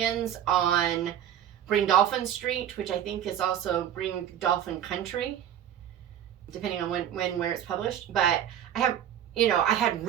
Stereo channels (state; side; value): quieter; left; 10.2 dB